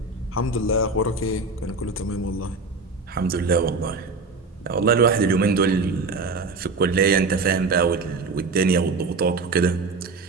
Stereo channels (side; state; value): left; quieter; 3.9 dB